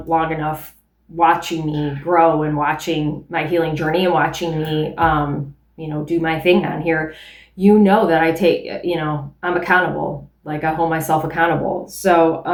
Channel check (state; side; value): identical; both; correlation 1.00